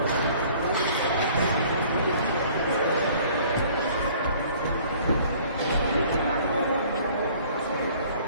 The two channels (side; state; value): both; inverted; correlation -0.53